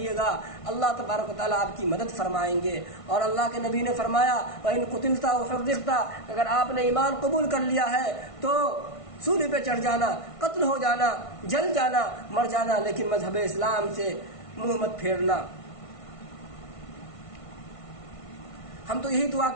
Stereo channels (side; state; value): right; late; 1.5 ms